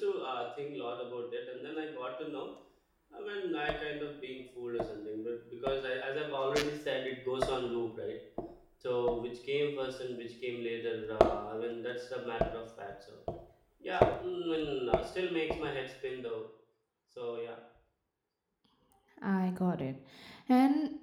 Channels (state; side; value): identical; both; correlation 1.00